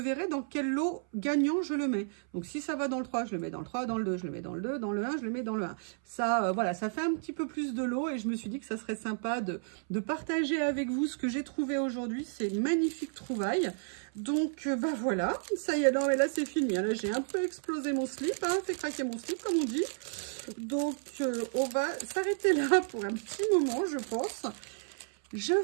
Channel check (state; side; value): silent; left; 56 dB below the other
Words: dans quel lot gagnant je le mets. Donc, si ça va dans le 3, je le mets dans le 3, dans le 2, je le mets dans le 2, dans le 1, je le mets dans le 1. Ça, voilà, ça fait un petit peu plus de lots et je me suis dit que ça serait sympa de partager avec vous ce que j'ai trouvé aujourd'hui. C'est une magnifique trouvaille. Donc, bah voilà, ça y est, non mais là c'est fini. Là, j'ai un peu explosé mon slip, hein, fait craquer mon slip comme on dit. Donc, on va s'arrêter là pour un petit moment, je pense. Je